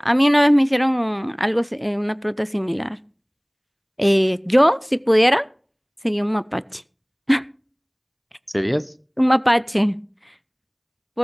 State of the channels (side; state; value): both; identical; correlation 1.00